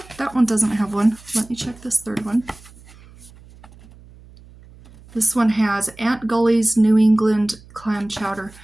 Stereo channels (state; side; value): noise; right; hum, 23 dB below the sound